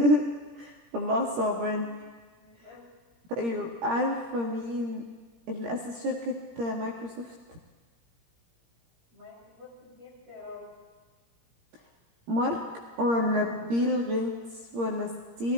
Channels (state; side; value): late; left; 17 ms